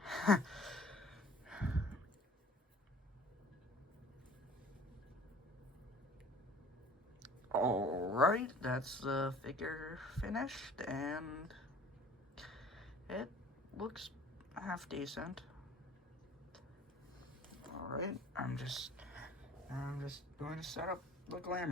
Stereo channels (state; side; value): normal; both; correlation 0.49